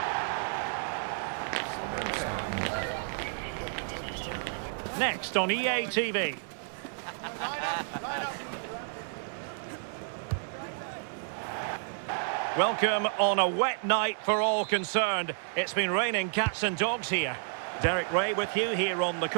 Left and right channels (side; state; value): left; silent; digital silence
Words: Next on EA TV. Welcome on a wet night for all concerned. It's been raining cats and dogs here. Derek Ray with you here on the